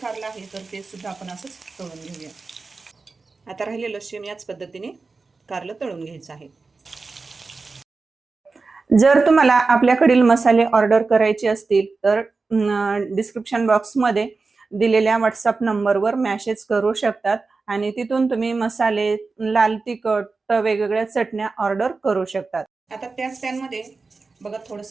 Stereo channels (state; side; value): quieter; left; 4.1 dB